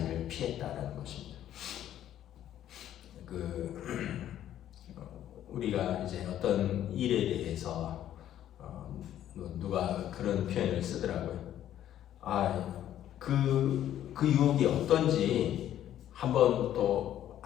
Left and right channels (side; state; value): right; quieter; 11.6 dB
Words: 피했다라는 것입니다. 우리가 이제 어떤 일에 대해서 누가 그런 표현을 쓰더라고요. 그 유혹이 어떤지 한번 또